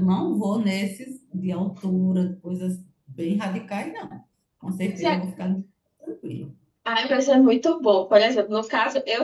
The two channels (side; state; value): both; identical; correlation 1.00